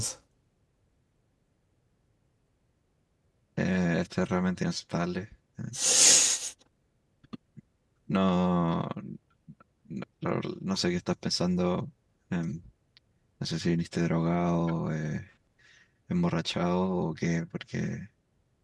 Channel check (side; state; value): both; identical; correlation 1.00